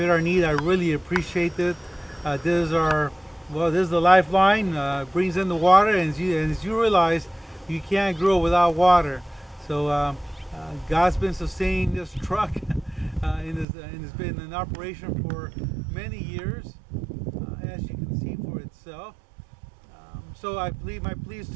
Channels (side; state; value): left; drops out; at 13.7 s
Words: our need, I really appreciate it. This is the lifeline. Brings in the water, and as you realize, you can't grow without water. So God's been sustaining this truck, and it's been in operation for many years, as you can see for itself. So my plea is